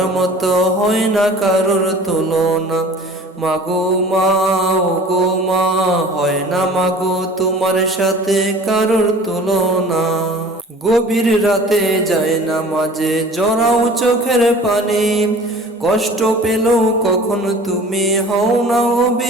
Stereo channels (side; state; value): both; normal; correlation 0.45